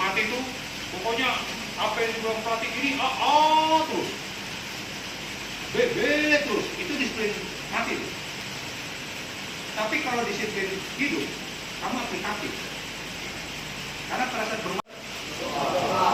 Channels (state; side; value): identical; both; correlation 1.00